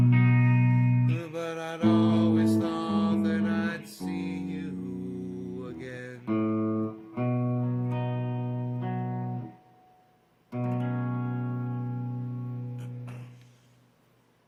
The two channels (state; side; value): identical; both; correlation 1.00